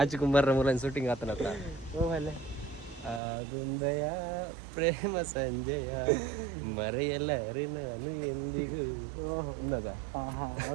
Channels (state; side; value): drops out; left; at 3.2 s